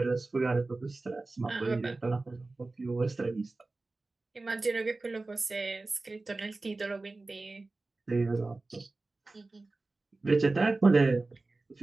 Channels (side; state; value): left; quieter; 3.3 dB